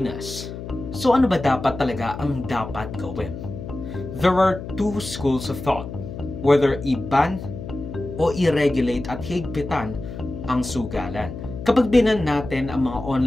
So ano ba dapat talaga ang dapat gawin? There are two schools of thought, whether i-ban o i-regulate at higpitan ang sugalan. Kapag binan natin ang mga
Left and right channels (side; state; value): left; noise; hum, 10 dB below the sound